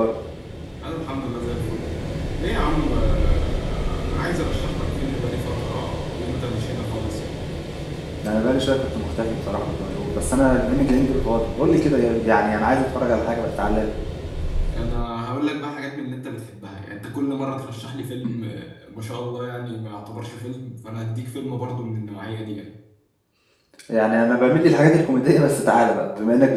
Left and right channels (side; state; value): both; identical; correlation 1.00